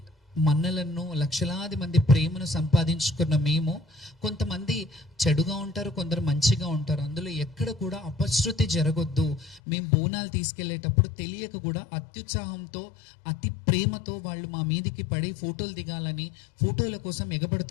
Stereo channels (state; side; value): drops out; right; at 9.6 s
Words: మన్నలను, లక్షలాది మంది ప్రేమను సంపాదించుకున్న మేము, కొంతమంది చెడుగా ఉంటారు, కొందరు మంచిగా ఉంటారు. అందులో ఎక్కడ కూడా అపశృతి జరగొద్దు. మేము బోనాలు తీసుకెళ్లేటప్పుడు తెలియక కూడా అత్యుత్సాహంతో, అతి ప్రేమతో వాళ్ళు మా మీదికి పడి ఫోటోలు దిగాలని ఫోటోల కోసం